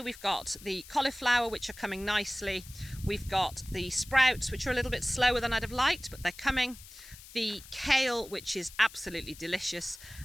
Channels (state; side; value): noise; left; hiss, 18 dB below the sound